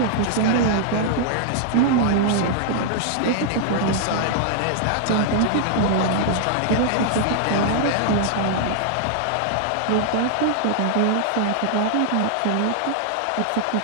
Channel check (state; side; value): different; both; correlation -0.01